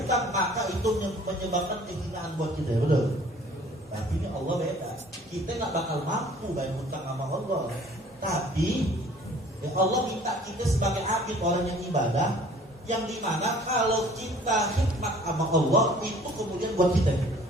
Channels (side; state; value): both; normal; correlation 0.52